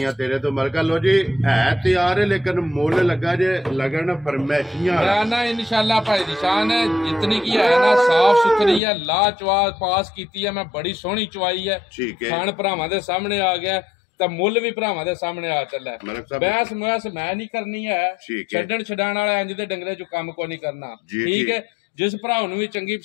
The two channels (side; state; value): right; drops out; at 8.8 s